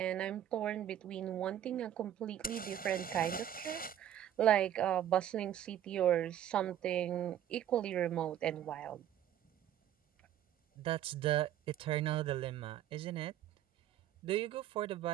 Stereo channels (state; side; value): quieter; left; 11.0 dB